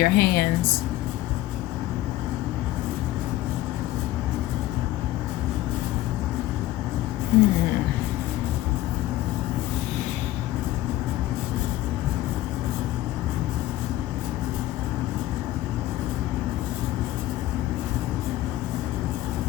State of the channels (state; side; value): quieter; right; 15.4 dB